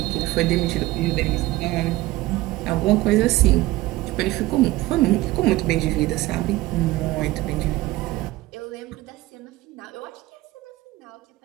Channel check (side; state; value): left; quieter; 18.2 dB